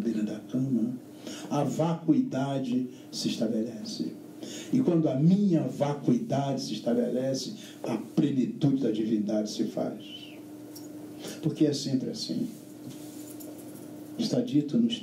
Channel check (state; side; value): identical; both; correlation 1.00